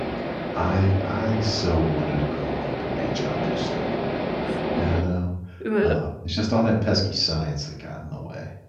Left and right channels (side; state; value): both; identical; correlation 1.00